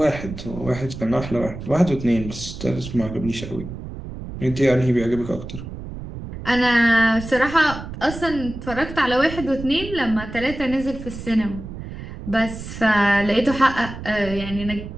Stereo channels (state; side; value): noise; right; rumble, 10 dB below the sound